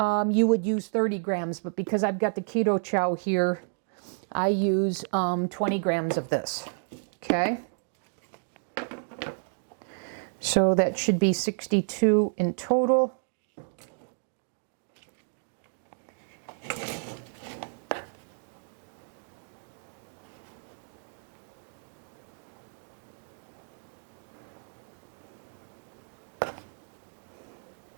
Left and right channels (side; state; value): left; silent; digital silence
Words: would use 30 grams, but because I've got the Keto Chow here, I use 20 grams of this. Okay. So that should be 62 in total.